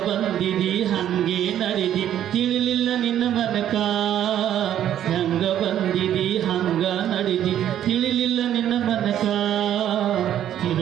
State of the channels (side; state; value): left; quieter; 10.9 dB